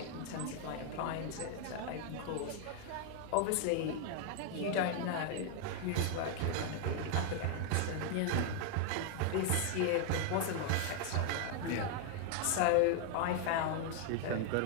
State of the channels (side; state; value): both; different; correlation 0.00